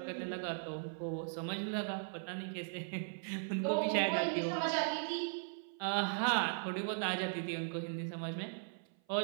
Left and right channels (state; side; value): silent; left; 52 dB below the other